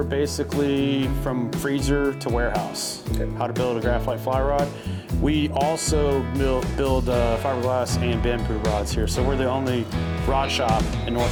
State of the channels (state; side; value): identical; both; correlation 1.00